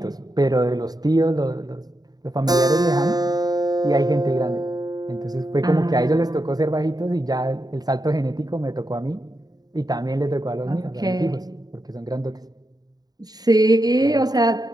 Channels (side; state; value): left; late; 0.19 ms